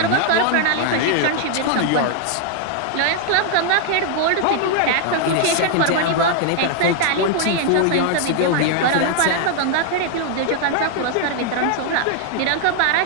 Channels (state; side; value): different; both; correlation 0.00